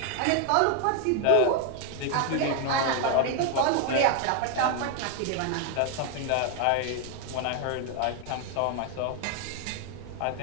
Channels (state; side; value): different; both; correlation 0.00